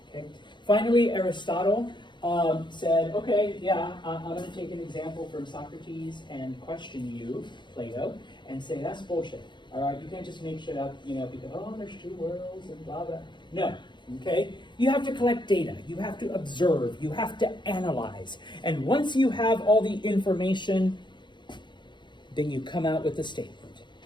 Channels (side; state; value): right; late; 0.22 ms